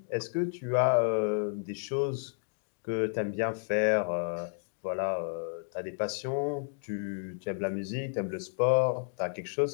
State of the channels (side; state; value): right; silent; 57 dB below the other